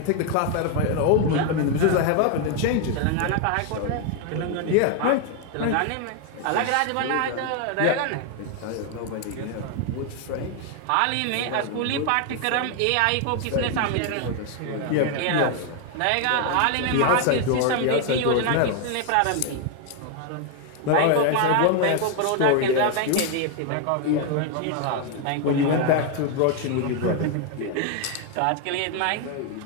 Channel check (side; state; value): both; different; correlation 0.01